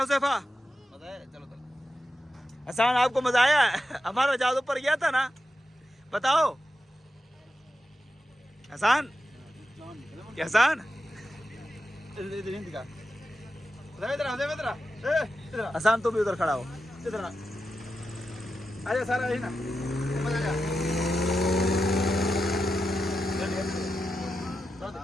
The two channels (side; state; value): both; normal; correlation 0.89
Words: मजा आया, चलो चलो। हसन, आपको मजा आया? हमारा जहाज ऊपर गया था ना, बताओ हसन। क्या हसन? हसन तुम भी उधर खड़ा हो, इधर आजा सारा है ना,